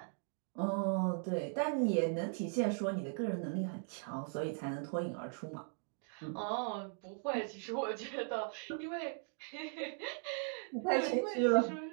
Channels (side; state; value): left; silent; 52 dB below the other